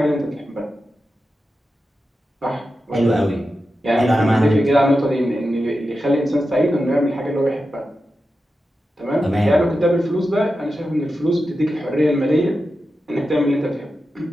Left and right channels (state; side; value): normal; both; correlation 0.91